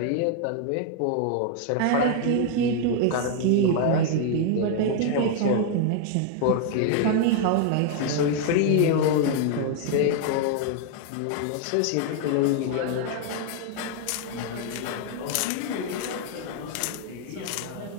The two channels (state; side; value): different; both; correlation 0.00